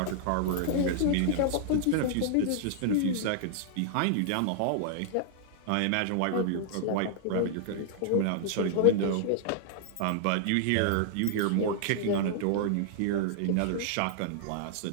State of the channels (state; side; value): different; both; correlation -0.01